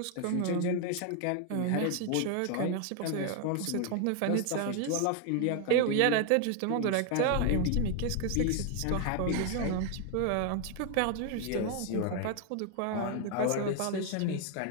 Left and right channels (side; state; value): both; different; correlation 0.01